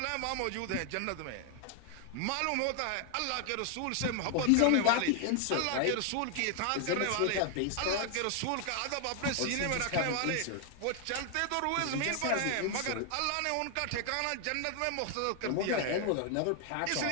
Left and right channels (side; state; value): both; different; correlation 0.00